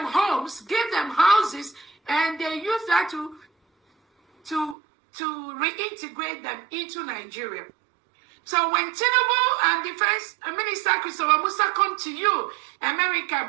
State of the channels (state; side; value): drops out; left; at 4.8 s